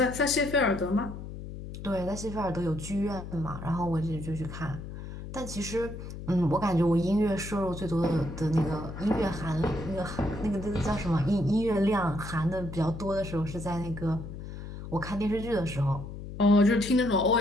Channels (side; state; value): left; noise; hum, 10 dB below the sound